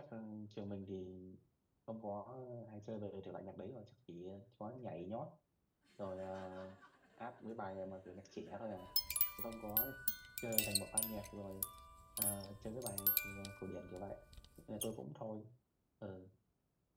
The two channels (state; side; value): identical; both; correlation 1.00